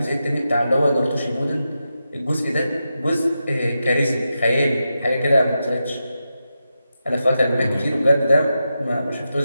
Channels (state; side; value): inverted; both; correlation -0.88